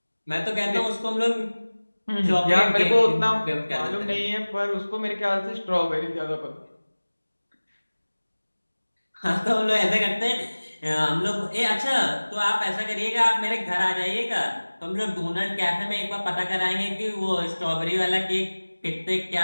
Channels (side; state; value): both; inverted; correlation -1.00